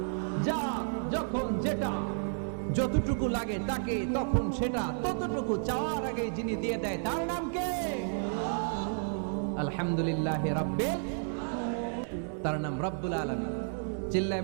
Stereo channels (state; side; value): silent; left; digital silence